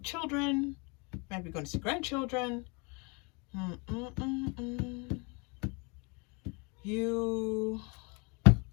children, you might be going to see grandchildren. You,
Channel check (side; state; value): right; quieter; 31.2 dB